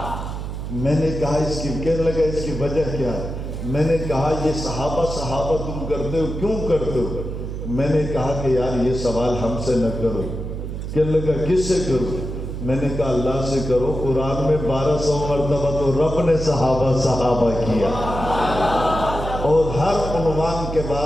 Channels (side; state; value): right; noise; hum, 6 dB below the sound